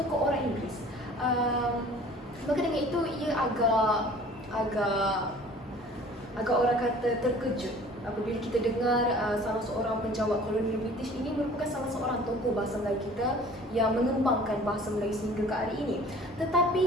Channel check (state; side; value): normal; both; correlation 0.48